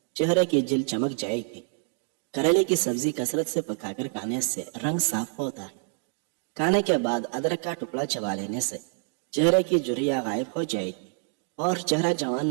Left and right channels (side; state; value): left; silent; 56 dB below the other